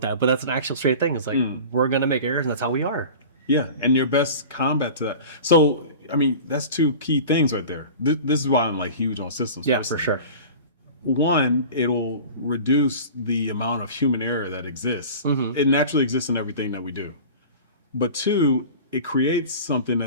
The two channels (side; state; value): both; inverted; correlation -0.38